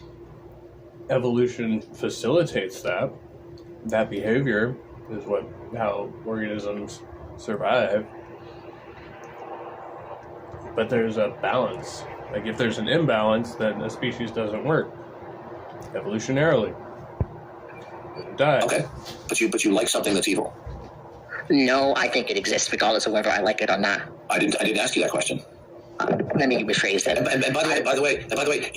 evolution facilitates that. That behavior is how organisms survive. But there's a balance. Like, if there's an imbalance, then a species doesn't work. Evolutionarily. It dies. Okay. But you like something that's evil. No, I think it exists regardless of whether I like it or not. I didn't ask you that question. Let me rephrase that. And by the way,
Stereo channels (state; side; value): identical; both; correlation 1.00